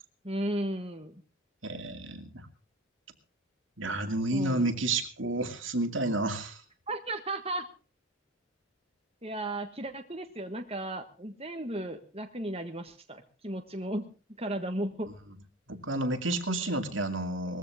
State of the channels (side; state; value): both; normal; correlation 0.35